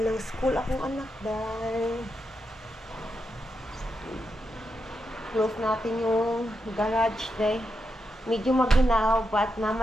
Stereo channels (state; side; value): normal; both; correlation 0.85